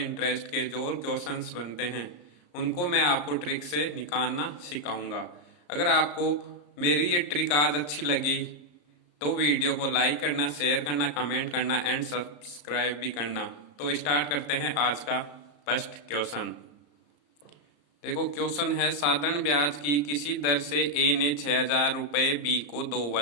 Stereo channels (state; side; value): late; right; 34 ms